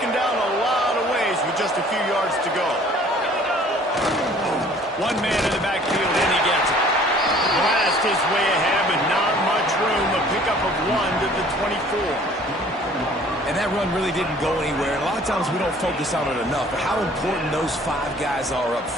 down a lot of ways with just a few yards to go. One man in the backfield, and he gets it. Blast his way ahead, but not much room. A pickup of 1 to the 24. And that run really didn't go anywhere. And a lot of times we don't focus on it enough, but how important those 5 guys are up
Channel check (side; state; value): both; normal; correlation 0.53